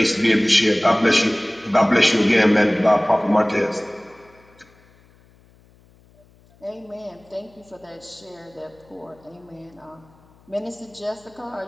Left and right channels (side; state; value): left; noise; hum, 30 dB below the sound